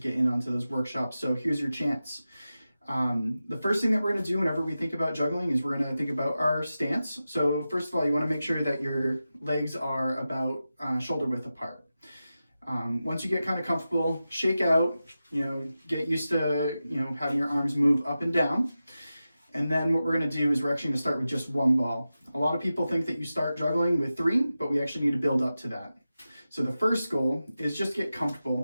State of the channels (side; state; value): both; inverted; correlation -0.93